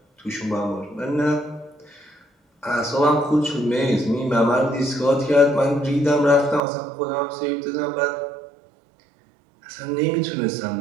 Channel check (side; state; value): left; drops out; at 6.6 s